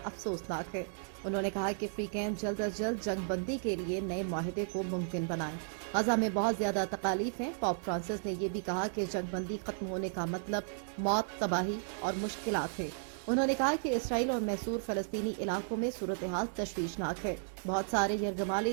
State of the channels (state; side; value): silent; left; digital silence